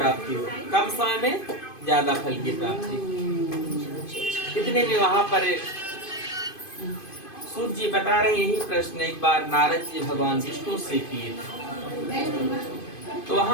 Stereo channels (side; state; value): right; late; 2.5 ms